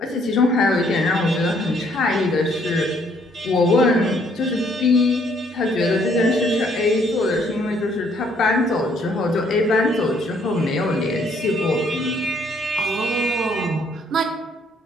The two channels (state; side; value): normal; both; correlation 0.66